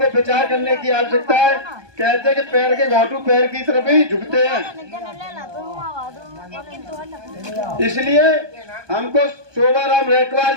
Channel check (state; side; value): late; left; 1.2 ms